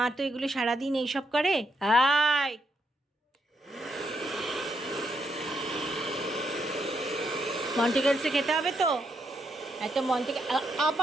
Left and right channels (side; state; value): both; normal; correlation 0.78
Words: তো এগুলো সারাদিন এইসব করে। আয়, মন্টিকেলসে খেতে হবে তো, এত মন্টিকেল